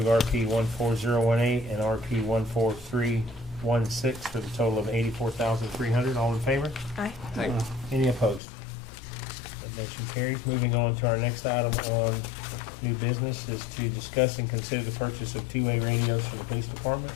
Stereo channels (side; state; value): right; drops out; at 8.4 s